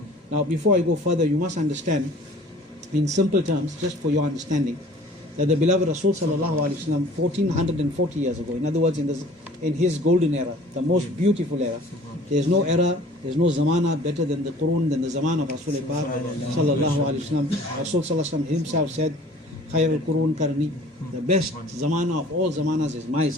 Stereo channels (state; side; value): normal; both; correlation 0.49